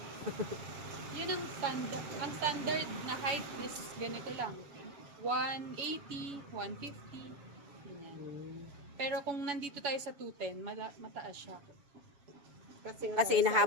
Yun ang standard. Ang standard na height is ganito lang. 180, 150. Ganyan. Pero kung nandito tayo sa 210, mataas siya. Kasi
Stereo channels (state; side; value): late; left; 7.1 ms